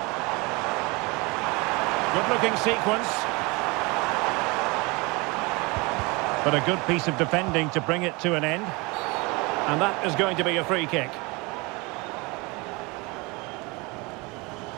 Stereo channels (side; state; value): left; quieter; 26.2 dB